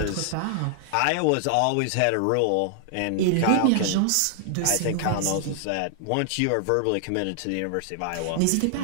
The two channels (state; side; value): different; both; correlation -0.01